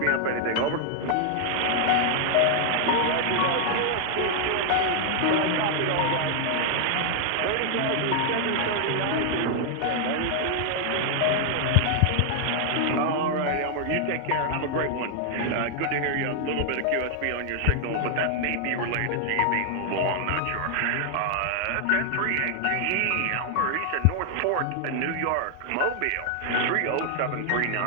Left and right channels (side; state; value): both; different; correlation 0.00